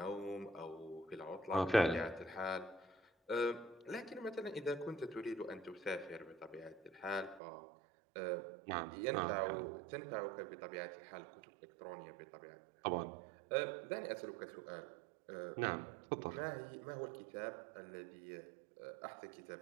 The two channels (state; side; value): drops out; left; at 7.4 s